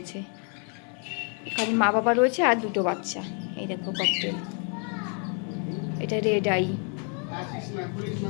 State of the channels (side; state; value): right; quieter; 39.9 dB